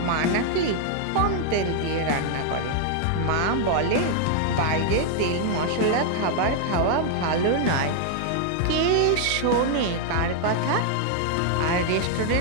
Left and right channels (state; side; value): different; both; correlation 0.00